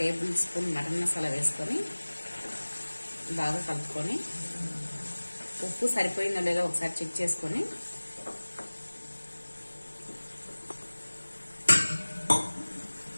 స్పూన్ మటన్ మసాలా వేసుకొని బాగా కలుపుకొని ఉప్పు సరిపోయిందో లేదో ఒకసారి చెక్ చేసుకొని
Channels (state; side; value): inverted; both; correlation -1.00